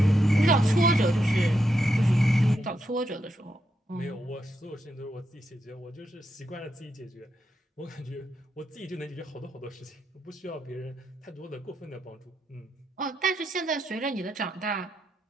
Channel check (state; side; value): normal; both; correlation 0.83